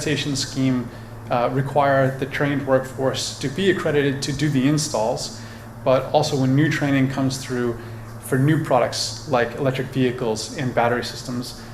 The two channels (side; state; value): both; identical; correlation 1.00